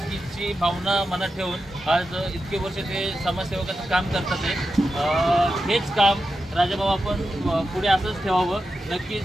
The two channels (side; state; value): both; normal; correlation 0.89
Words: भावना मनात ठेवून आज इतके वर्ष ते समाजसेवकाचं काम करतात। हेच काम राजाभाऊ आपण पुढे असंच ठेवावं।